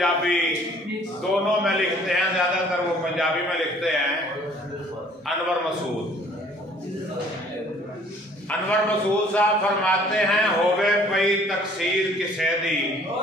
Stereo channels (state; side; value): normal; both; correlation 0.56